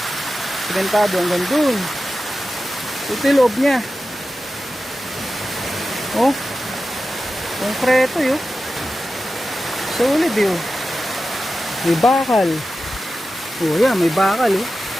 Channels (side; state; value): both; normal; correlation 0.93